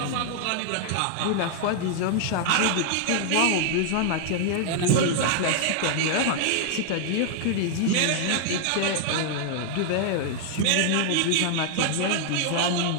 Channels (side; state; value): both; different; correlation 0.00